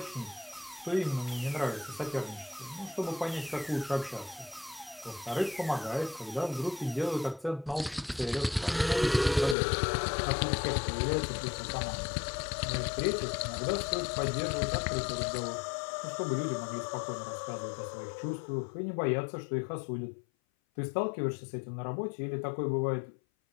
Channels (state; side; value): drops out; right; at 9.6 s